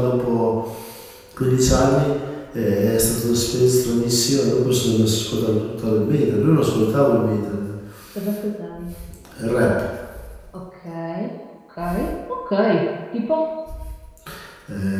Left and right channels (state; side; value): identical; both; correlation 1.00